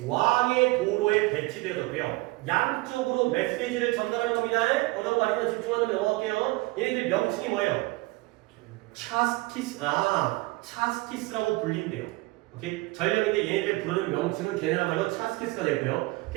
왕의 도로에 배치되었고요. 양쪽으로 메시지를 전달하는 겁니다. 어려운 거 아니면 집중하면 넘어갈게요. 얘네들 명칭이 뭐예요? 차스키스라고 불린대요. 오케이? 전령인데 얘네들 부르는 명칭은 걔네야말로 차스키스가 되고요.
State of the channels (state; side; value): quieter; left; 22.0 dB